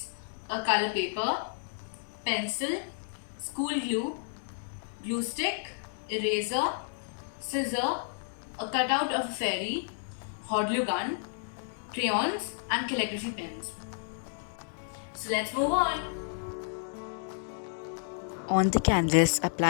a color paper, pencil, school glue, glue stick, eraser, scissor, a cutout of a fairy, hot glue gun, crayons and calligraphy pens. So let's move on. On the canvas,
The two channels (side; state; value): right; silent; digital silence